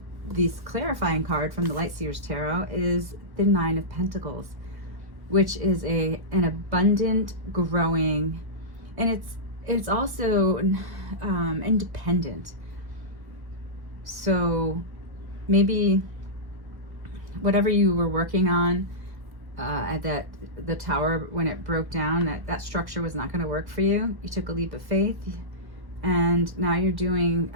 this clarifying card from the Light Seers Tarot is the Nine of Pentacles, which is an abundant, growing, and it's also independent. So maybe whatever you were working on at the tower when it broke down, that structure was not going to work for you. You took a leap of faith, and now you're doing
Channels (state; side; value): late; left; 1.1 ms